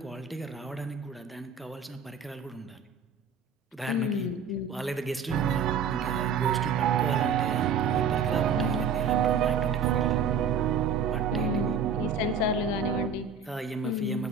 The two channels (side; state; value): left; quieter; 5.6 dB